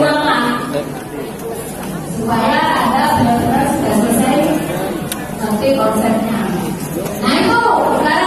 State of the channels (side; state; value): both; identical; correlation 1.00